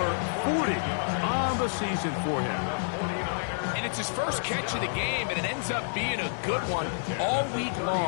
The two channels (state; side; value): silent; right; digital silence